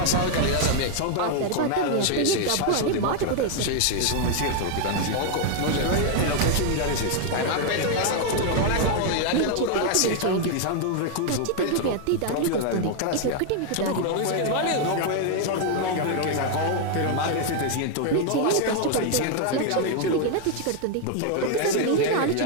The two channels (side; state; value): both; different; correlation 0.00